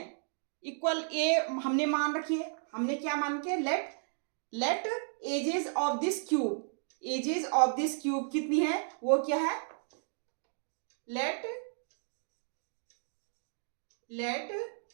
इक्वल ए हमने मान रखी है। हमने क्या मान के, let edges of this cube कितनी है, वो क्या है, let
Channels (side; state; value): left; silent; digital silence